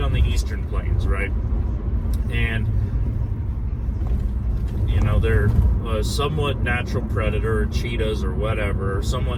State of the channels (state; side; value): identical; both; correlation 1.00